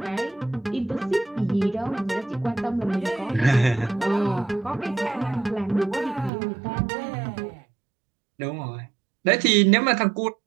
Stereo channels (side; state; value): left; drops out; at 6.3 s